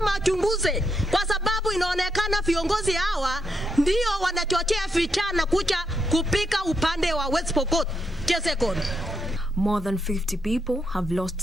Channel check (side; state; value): both; normal; correlation 0.81